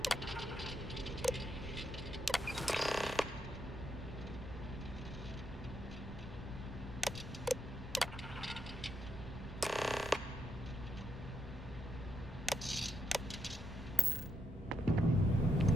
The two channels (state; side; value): normal; both; correlation 0.82